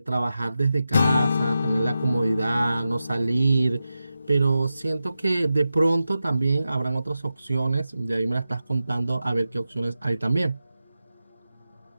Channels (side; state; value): both; inverted; correlation -0.92